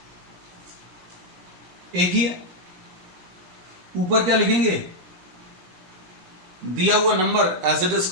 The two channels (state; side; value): late; left; 17 ms